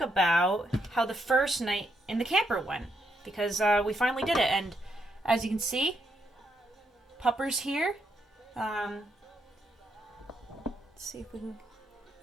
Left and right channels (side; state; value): both; normal; correlation 0.78